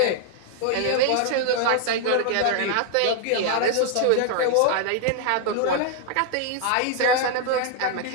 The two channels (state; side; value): different; both; correlation 0.00